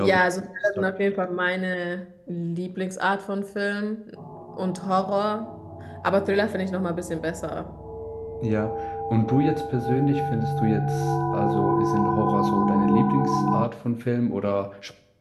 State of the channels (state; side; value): identical; both; correlation 1.00